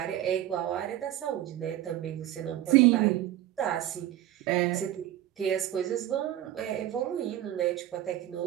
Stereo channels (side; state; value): left; quieter; 13.1 dB